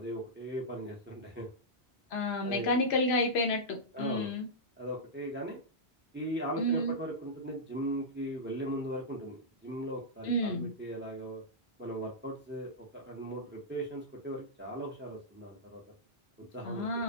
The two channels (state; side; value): normal; both; correlation -0.11